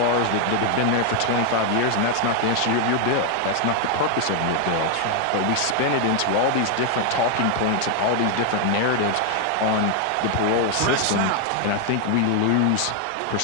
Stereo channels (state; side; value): different; both; correlation 0.00